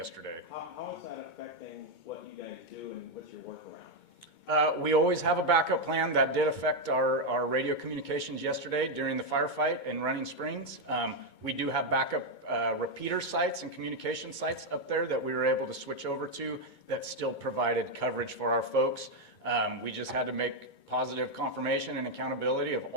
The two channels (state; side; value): late; right; 2.2 ms